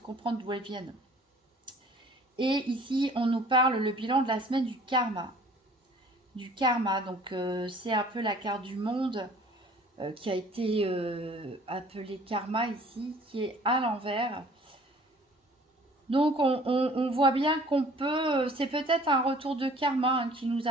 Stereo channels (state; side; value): normal; both; correlation 0.52